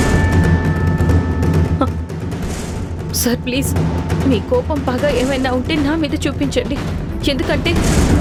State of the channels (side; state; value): both; identical; correlation 1.00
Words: సార్ ప్లీజ్, మీ కోపం బాగా ఏమైనా ఉంటే నా మీద చూపించండి. ఎందుకంటే